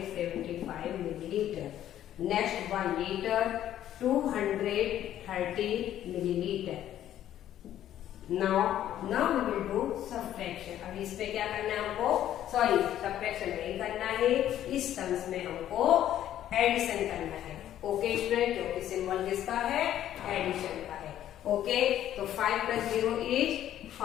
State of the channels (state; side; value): quieter; right; 11.7 dB